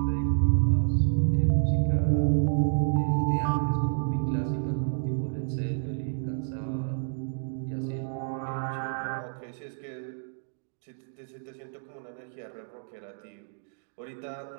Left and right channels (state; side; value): silent; left; digital silence